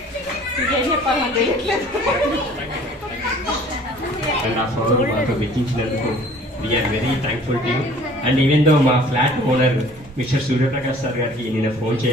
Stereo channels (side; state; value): both; normal; correlation 0.51